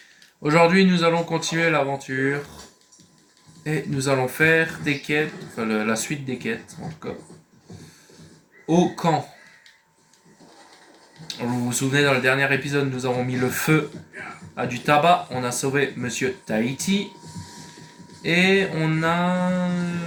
Aujourd'hui, nous allons continuer l'aventure. Et nous allons faire des quêtes, enfin la suite des quêtes en tout cas. Au camp. Vous vous souvenez, dans le dernier épisode, nous avons mis le feu à du tabac. On a sauvé Monsieur Tahiti. Et on a...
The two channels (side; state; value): both; identical; correlation 1.00